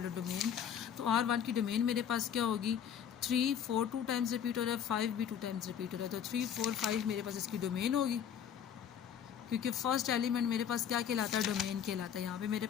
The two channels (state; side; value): quieter; right; 8.6 dB